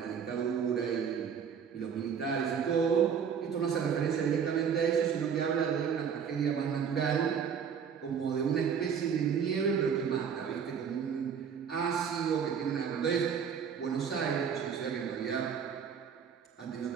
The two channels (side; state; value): left; quieter; 7.2 dB